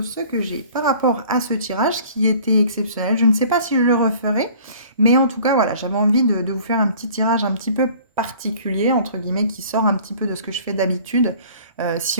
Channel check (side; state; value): both; inverted; correlation -0.50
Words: ceux que j'ai par rapport à ce tirage qui était exceptionnel. Je ne sais pas si je le referai, mais en tout cas voilà, j'avais envie de vous faire un petit tirage un petit peu particulier, entre guillemets, qui sort un petit peu de ce que je fais d'habitude.